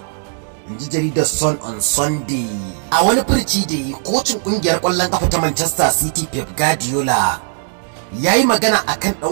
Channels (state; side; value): silent; left; digital silence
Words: inji jaridar Sun on Sunday. A wani furci da yi, kocin kungiyar kwallon kafa ta Manchester City Pep Guardiola ya yi magana akan